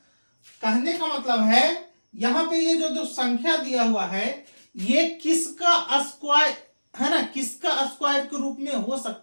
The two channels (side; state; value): both; inverted; correlation -1.00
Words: कहने का मतलब है यहां पे ये जो संख्या दिया हुआ है ये किसका स्क्वायर है ना, किसका स्क्वायर के रूप में हो